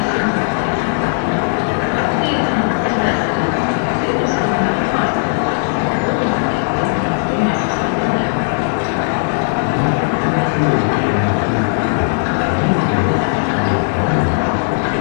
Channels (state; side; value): silent; right; 66 dB below the other